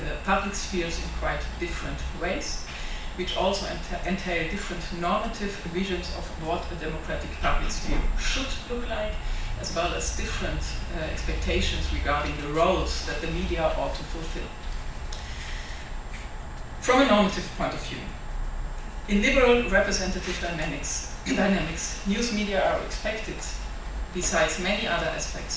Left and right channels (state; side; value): identical; both; correlation 1.00